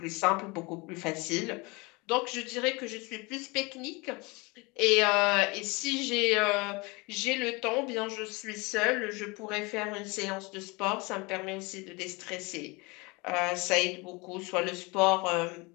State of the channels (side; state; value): right; quieter; 26.5 dB